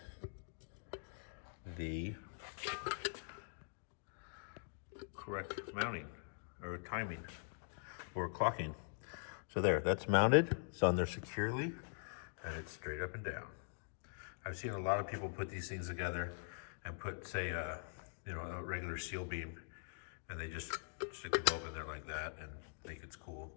the correct mounting or timing or clocking. So there, that's mounted, it's on there securely, and it's straight up and down. I've seen a lot of people put these things together and put, say, a regular seal beam, and they just stick the bulb in there like that and think it's cool.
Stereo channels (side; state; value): right; silent; digital silence